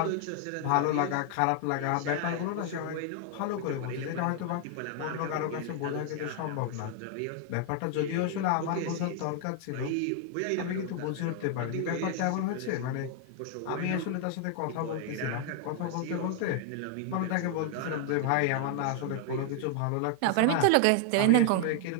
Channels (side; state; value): both; different; correlation 0.00